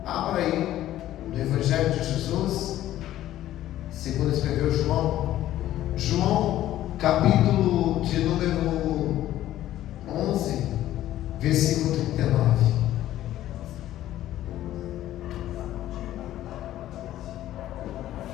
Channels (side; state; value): right; quieter; 13.4 dB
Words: abra aí no Evangelho de Jesus, segundo escreveu João. João, capítulo de número 11, versículo 39.